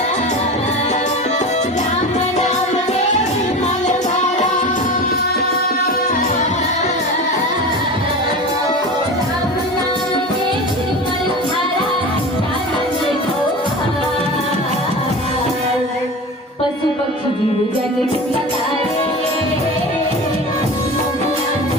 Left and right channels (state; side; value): normal; both; correlation 0.31